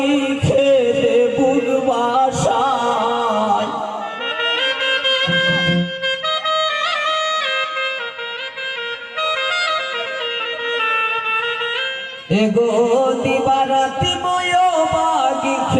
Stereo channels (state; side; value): identical; both; correlation 1.00